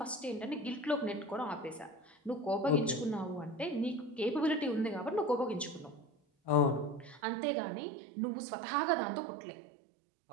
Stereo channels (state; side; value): drops out; left; at 7.2 s